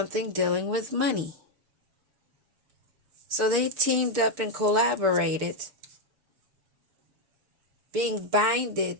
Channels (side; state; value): left; late; 6.6 ms